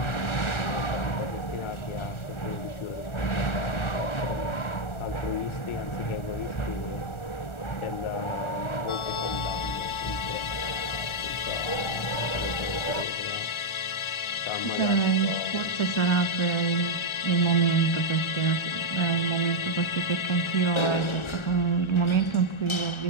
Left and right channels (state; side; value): late; right; 1.4 ms